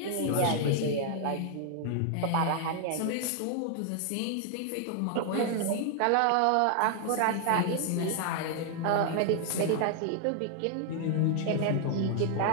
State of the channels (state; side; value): different; both; correlation 0.00